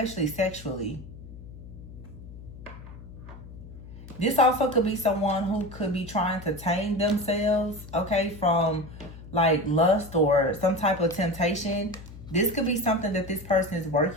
sexually. This also could be someone who could be trying to tame themselves, okay, from like lust or some type of temptation. This could be something that this person is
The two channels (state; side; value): noise; left; hum, 15 dB below the sound